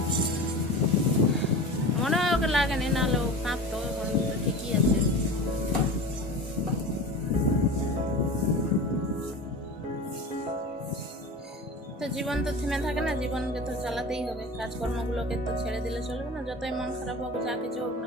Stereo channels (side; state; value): both; normal; correlation 0.33